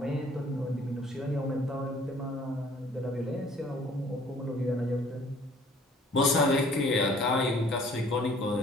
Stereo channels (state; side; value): normal; both; correlation 0.55